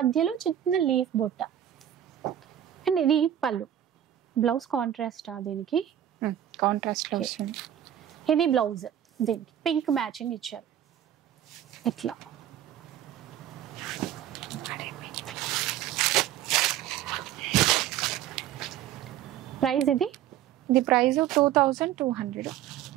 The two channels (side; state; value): left; quieter; 11.1 dB